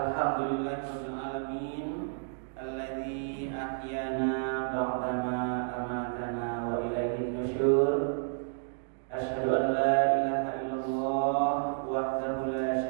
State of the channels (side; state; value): left; silent; digital silence